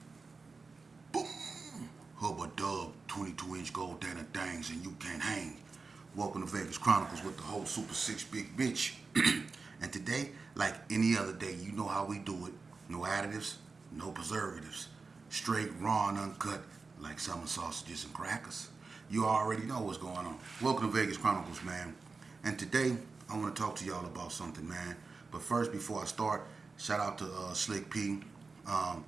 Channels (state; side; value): quieter; left; 4.2 dB